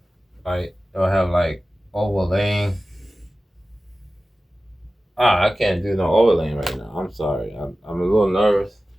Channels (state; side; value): normal; both; correlation 0.95